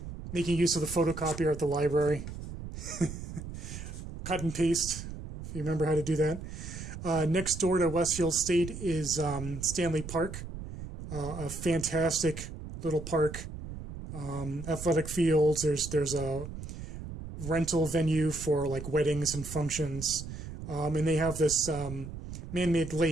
use of the photocopier at the library, cut and paste, if you remember how to do that. Next door to Westfield State is Stanley Park, a fantastic little park. Athletic fields. There's a rental venue for like weddings and functions. And they have this man-made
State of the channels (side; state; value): right; noise; rumble, 10 dB below the sound